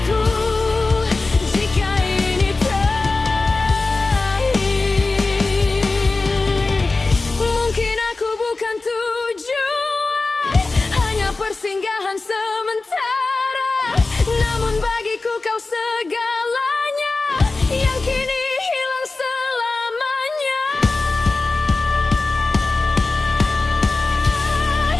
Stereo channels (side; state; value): right; quieter; 3.5 dB